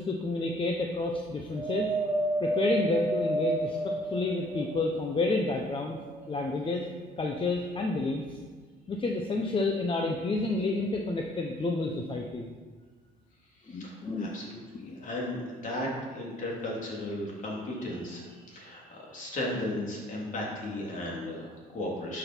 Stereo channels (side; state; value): both; normal; correlation 0.61